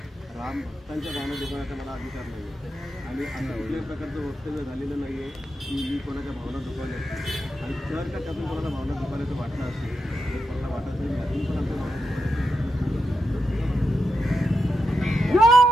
राम भक्तांच्या भावना दुखवण्याचा मला अधिकार नाही. आणि असं कुठल्याही प्रकारचं वक्तव्य झालेलं नाही आहे की मी कोणाच्या भावना दुखवल्या. आणि जर का त्यातून कोणाला भावना दुखवल्याचं वाटलं असेल तर कोणाला वाटत नाही त्यातून पण आमच्या भावना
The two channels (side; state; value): both; normal; correlation 0.87